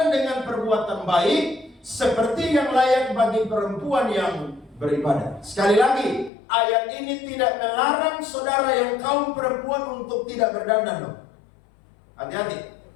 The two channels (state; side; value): drops out; right; at 6.3 s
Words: dengan perbuatan baik, seperti yang layak bagi perempuan yang beribadah. Sekali lagi, ayat ini tidak melarang saudara yang kaum perempuan untuk tidak berdandan loh. Hati-hati.